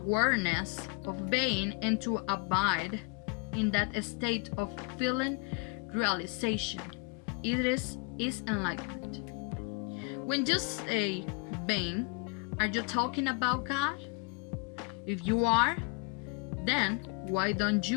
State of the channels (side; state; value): right; quieter; 31.4 dB